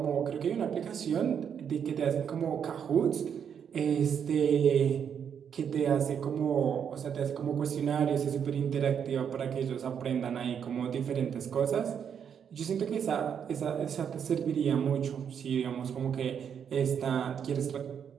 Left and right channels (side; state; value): left; quieter; 7.9 dB